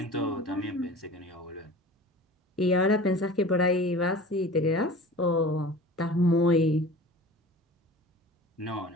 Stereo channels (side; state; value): both; normal; correlation 0.40